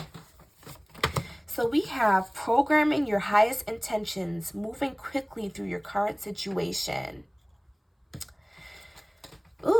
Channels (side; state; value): both; identical; correlation 1.00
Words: So we have programming your highest intentions, moving quickly through your current situation.